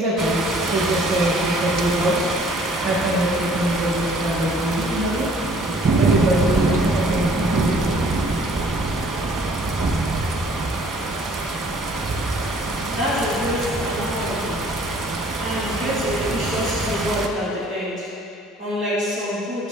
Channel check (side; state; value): both; normal; correlation 0.56